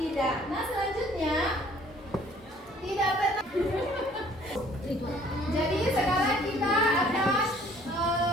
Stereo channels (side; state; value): both; normal; correlation 0.57